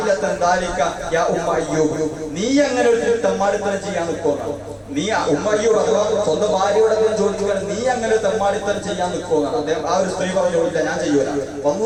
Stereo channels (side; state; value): both; identical; correlation 1.00